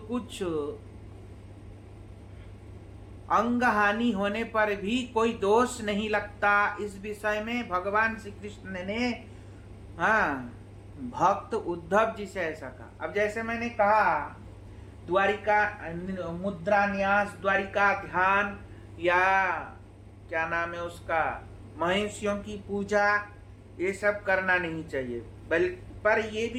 अंग हानि होने पर भी कोई दोष नहीं लगता। इस विषय में भगवान श्री कृष्ण ने भक्त उद्धव जी से ऐसा कहा। अब जैसे मैंने कहा, द्वारिका मुद्रा न्यास, द्वारिका ध्यान, या क्या नाम है उसका, महिषियों की पूजा, ये सब करना नहीं चाहिए, पर ये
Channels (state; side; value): identical; both; correlation 1.00